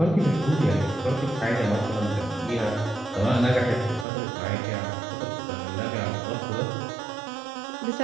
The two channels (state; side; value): drops out; left; at 4.0 s